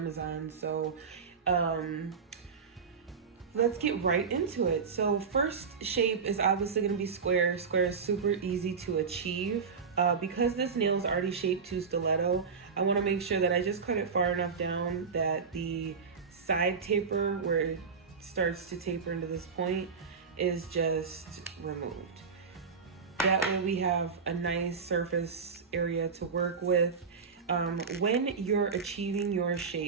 So let's get right into it. So first shape is obviously going to be square. Square is super easy to achieve. Because this nail is already shaped to stiletto, I want to make sure that I just cut it far enough down that the side taper, where it starts to taper into this point, is just removed. That way we have a nice surface area to work with. When you're achieving your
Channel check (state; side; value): quieter; left; 5.6 dB